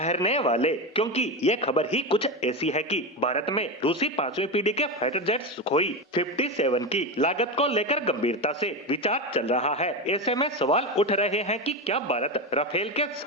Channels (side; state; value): both; normal; correlation 0.17